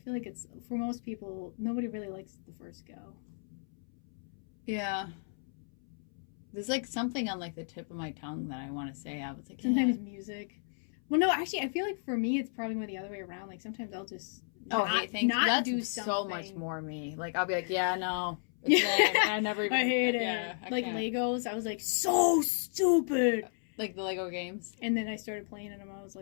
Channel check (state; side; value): silent; right; 56 dB below the other